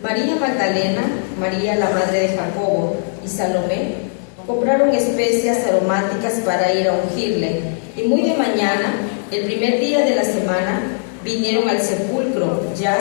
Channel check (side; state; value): right; silent; 67 dB below the other